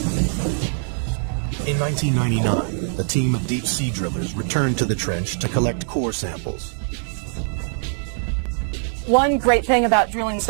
In 1999, a team of deep-sea drillers returned to the trench to collect core samples. One great thing about drilling this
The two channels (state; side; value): silent; left; digital silence